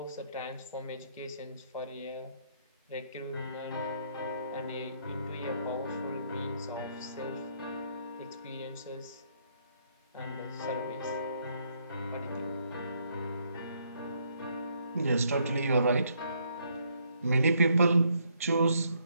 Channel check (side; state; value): both; inverted; correlation -0.71